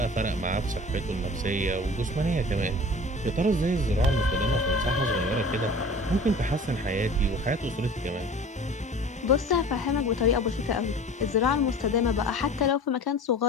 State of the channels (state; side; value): normal; both; correlation 0.41